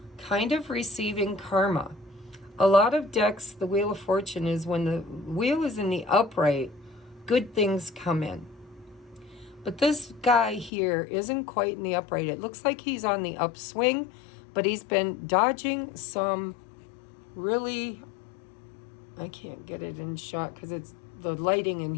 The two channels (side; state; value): right; drops out; at 10.7 s